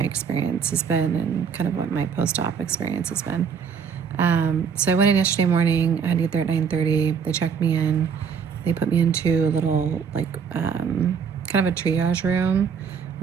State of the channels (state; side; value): quieter; left; 6.5 dB